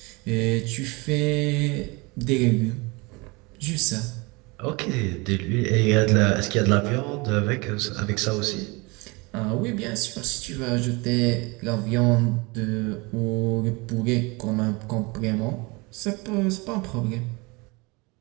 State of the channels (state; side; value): quieter; left; 26.5 dB